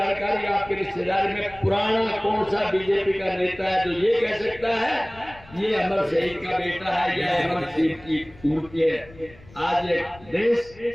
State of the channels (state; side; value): noise; left; rumble, 22 dB below the sound